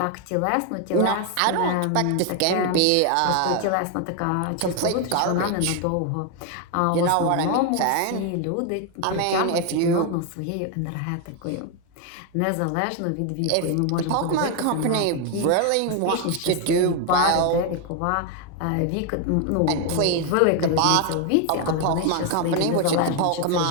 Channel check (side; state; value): both; different; correlation 0.01